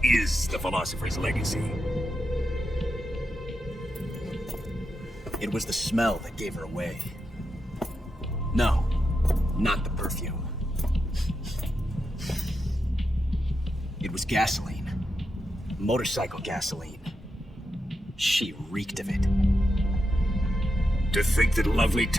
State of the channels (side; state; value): both; normal; correlation 0.86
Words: is the philosopher's legacy. It was the smell that gave her away. No, not the perfume. It was gasoline. Motorcycle gasoline. She reeked of it. To think that lovely